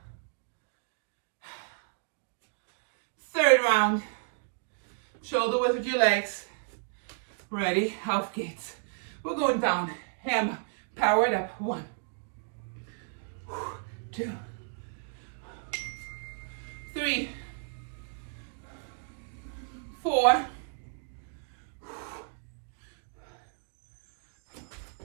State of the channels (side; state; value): left; silent; digital silence